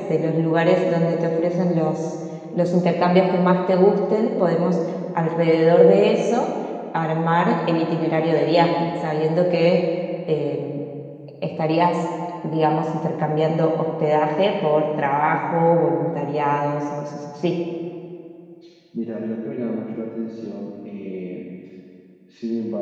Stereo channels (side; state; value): both; identical; correlation 1.00